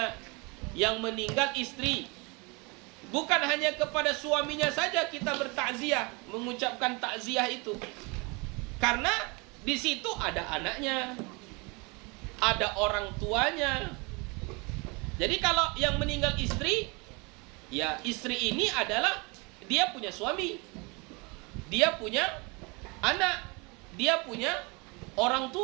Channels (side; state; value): left; quieter; 28.9 dB